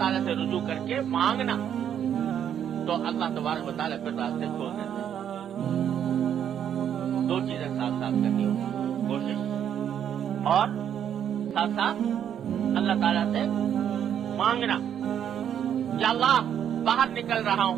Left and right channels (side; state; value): left; quieter; 9.3 dB